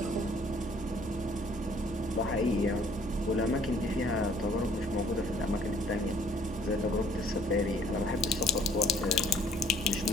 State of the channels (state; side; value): normal; both; correlation 0.59